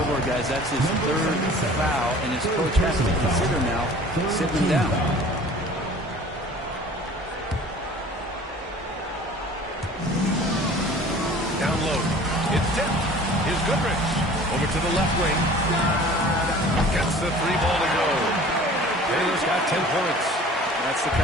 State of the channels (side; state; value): both; normal; correlation 0.46